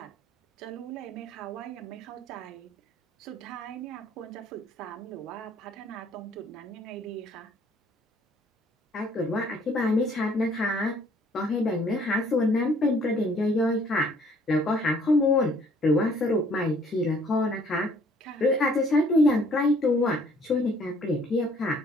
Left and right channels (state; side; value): normal; both; correlation 0.60